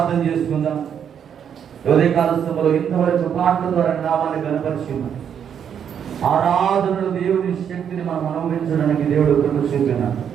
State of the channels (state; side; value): quieter; left; 8.3 dB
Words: చేసుకుందాం. ఉదయకాల సమయంలో ఇంతవరకు పాటల ద్వారా నామాన్ని కనపరిచింది. ఆరాధనలు దేవుని శక్తిని మనం అనుభవించడానికి దేవుడు కృప చూపినాడు.